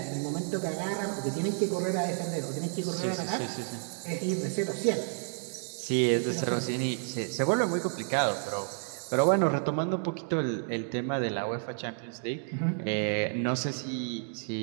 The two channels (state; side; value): silent; left; 55 dB below the other